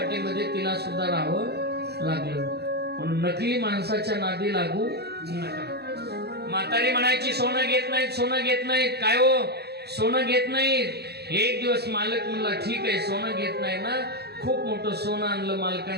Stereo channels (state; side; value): late; left; 0.47 ms